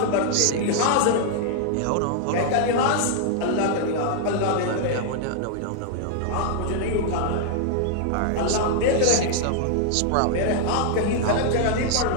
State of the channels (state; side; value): different; both; correlation -0.01